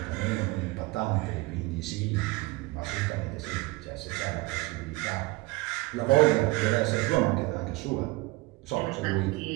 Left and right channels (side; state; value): left; quieter; 21.8 dB